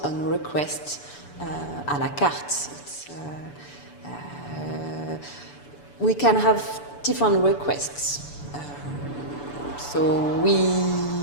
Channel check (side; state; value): right; late; 6.9 ms